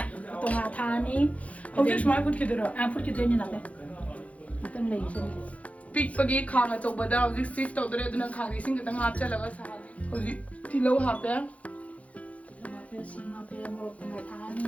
तोंगा थानी हौजे स्माय फुट खिदरा फुट खिदोइनी नाते मतम लेइसे पिकपगी खांग अचौबदा हौजिक सिफ तौदरे अदुना खांगी सिंग खतंग हापचलगा साने हौजिक तिलौ हापे सिंग हापे मोरक थानी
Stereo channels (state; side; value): late; right; 0.066 ms